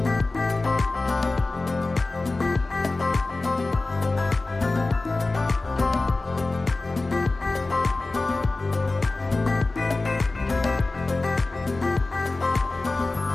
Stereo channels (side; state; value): right; quieter; 3.3 dB